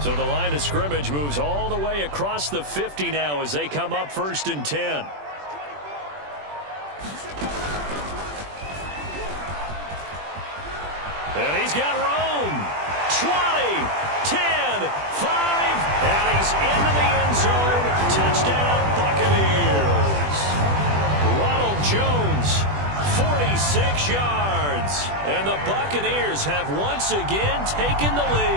So the line of scrimmage moves all the way across the 50 now as they come up 1st and 10. And he's got room. 20, 10, 5, and he's into the end zone. Touchdown, Buccaneers. Ronald Jones, 46 yards. And the Buccaneers have once again taken the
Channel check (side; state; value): left; late; 20 ms